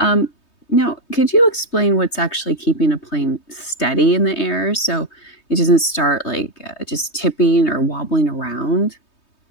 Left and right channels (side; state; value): right; late; 3.2 ms